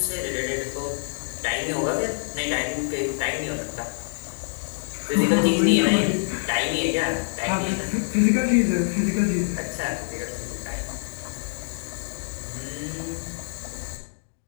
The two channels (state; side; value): silent; right; digital silence